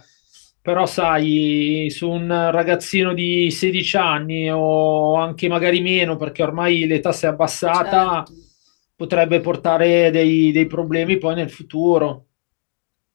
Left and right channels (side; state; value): right; silent; digital silence